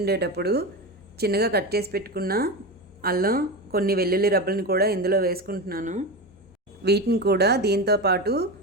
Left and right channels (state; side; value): normal; both; correlation 0.21